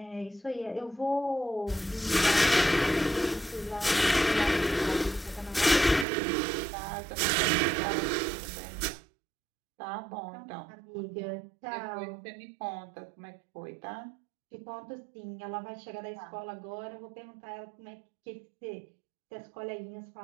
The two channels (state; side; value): drops out; left; at 6.1 s